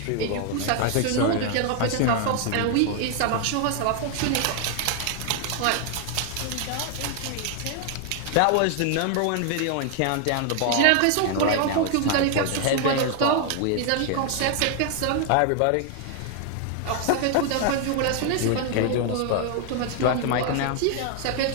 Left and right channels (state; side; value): different; both; correlation 0.00